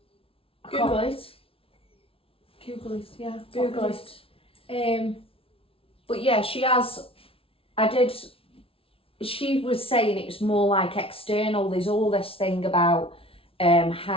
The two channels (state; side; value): late; right; 0.26 ms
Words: Google it. Google it, yeah. Google it. But yeah, she was saying it was more like external. There's all this thing about